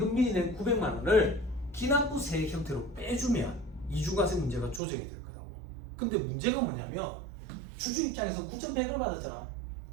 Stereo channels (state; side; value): drops out; left; at 4.8 s